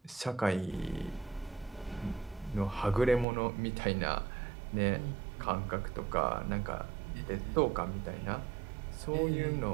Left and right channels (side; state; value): left; drops out; at 3.2 s